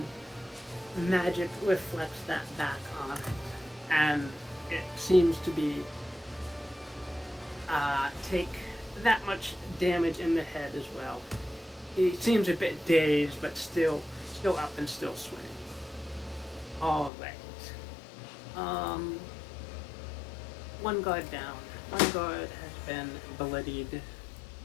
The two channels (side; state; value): right; drops out; at 17.1 s